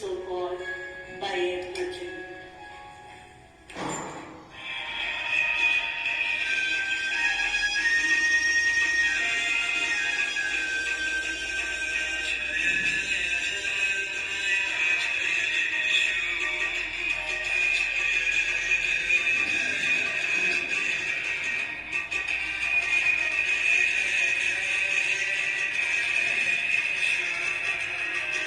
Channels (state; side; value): identical; both; correlation 1.00